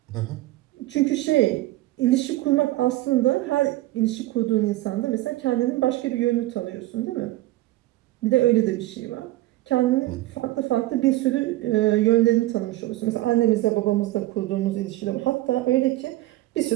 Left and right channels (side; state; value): left; quieter; 17.5 dB